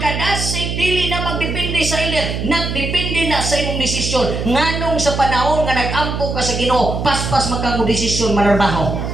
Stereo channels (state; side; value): noise; right; hum, 3 dB below the sound